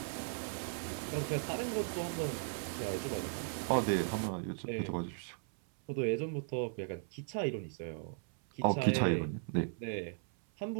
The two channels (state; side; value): silent; left; 53 dB below the other